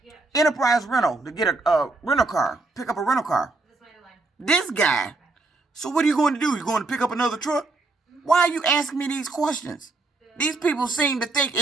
Enterprise Rental to get a rental car. Pick up a rental car. This guy. So what are you going to do? You going to pick up another truck? Why are you asking me these questions? These people seem to think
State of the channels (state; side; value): quieter; left; 3.4 dB